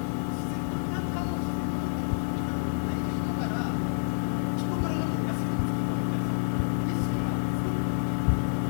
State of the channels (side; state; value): right; silent; digital silence